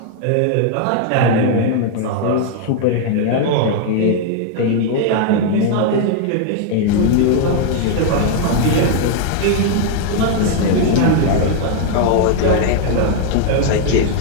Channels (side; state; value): both; different; correlation 0.00